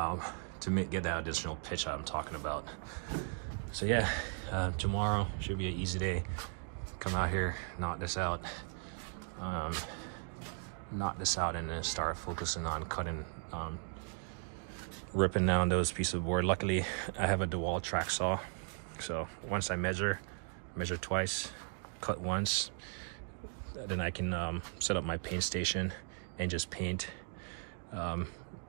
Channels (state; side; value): silent; left; 53 dB below the other